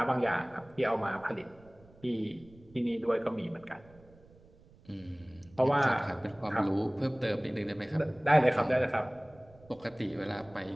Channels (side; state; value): right; noise; rumble, 25 dB below the sound